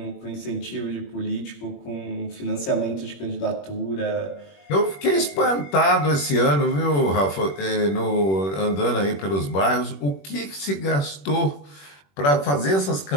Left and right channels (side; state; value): right; late; 21 ms